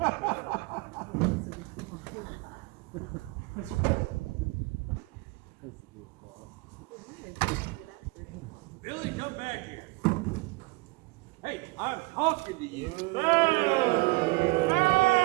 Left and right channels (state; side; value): quieter; left; 25.4 dB